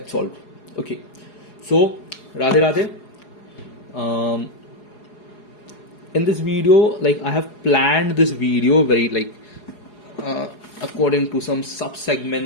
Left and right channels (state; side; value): late; right; 4.8 ms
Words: solved. Okay, so Radhe Radhe. In this video, like I have planned this video very according to some sub